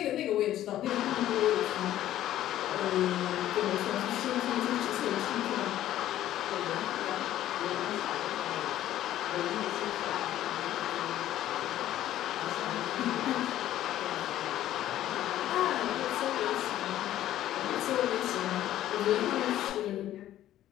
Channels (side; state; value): right; quieter; 12.9 dB